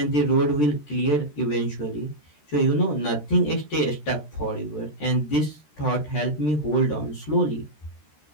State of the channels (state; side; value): late; right; 13 ms